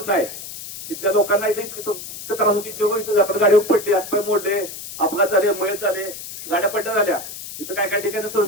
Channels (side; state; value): left; noise; hiss, 11 dB below the sound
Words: नाही. तिथल्या लोकांना इथं त्रास होती. आपण गाडीवर पडले, हातपाय मोडले, अपघात झाले, मयत झाले, गाड्या पड्ड्या झाल्या. इथं काय काय